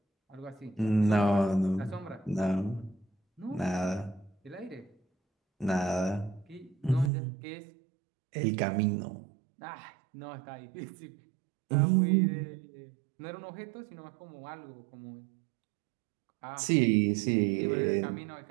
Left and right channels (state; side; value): drops out; left; at 7.1 s